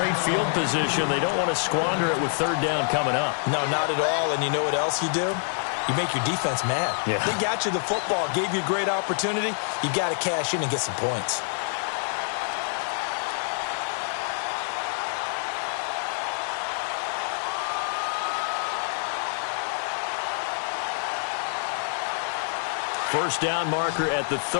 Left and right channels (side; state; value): right; silent; 61 dB below the other